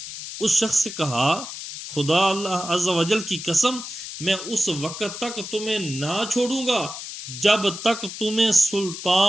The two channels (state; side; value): noise; left; hiss, 9 dB below the sound